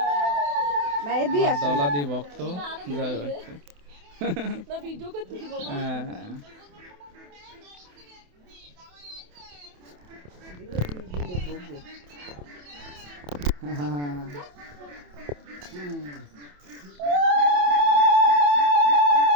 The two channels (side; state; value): left; late; 28 ms